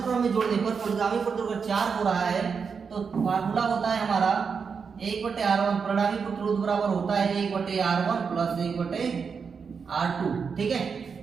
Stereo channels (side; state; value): left; quieter; 5.8 dB